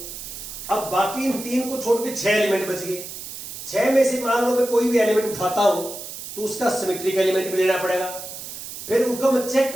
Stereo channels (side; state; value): right; noise; hiss, 10 dB below the sound